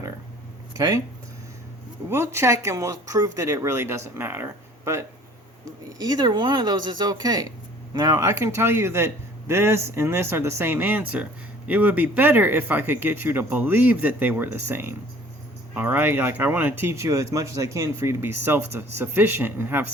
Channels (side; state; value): both; normal; correlation 0.52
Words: Okay? We'll check and we'll prove that it really doesn't matter. But either one of those is okay. Now, I can tell you that this and this are the same answer. It would be better if I could get you to believe that they were the same. Alright, like I want to teach you as much as I can for you to be self-sufficient and have